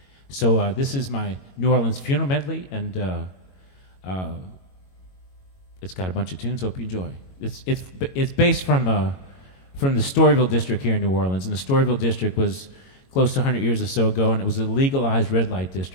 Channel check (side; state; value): right; late; 22 ms